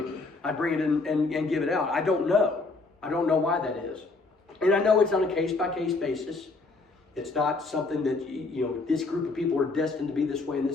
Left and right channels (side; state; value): right; quieter; 3.6 dB